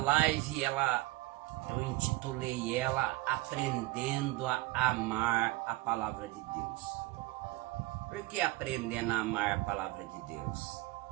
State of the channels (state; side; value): quieter; left; 20.0 dB